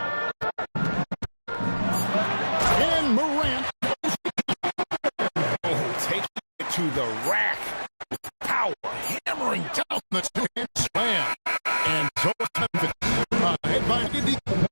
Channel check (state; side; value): inverted; both; correlation -1.00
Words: And Morant. Taking it to the rack. Power. Hammering down the two-hand slam. And so